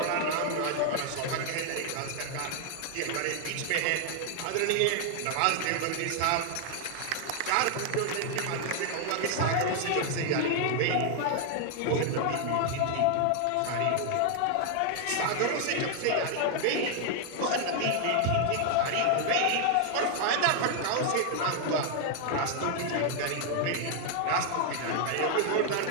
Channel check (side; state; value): both; different; correlation 0.00